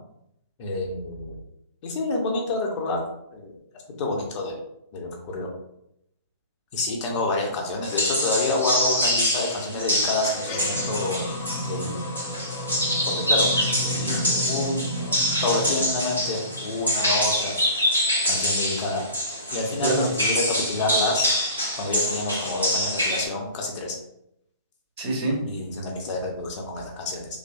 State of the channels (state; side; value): inverted; both; correlation -0.37